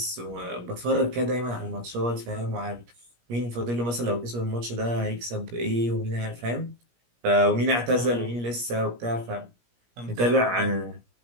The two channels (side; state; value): left; late; 17 ms